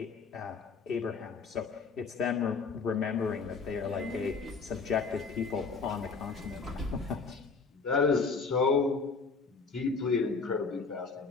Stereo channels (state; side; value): quieter; right; 4.7 dB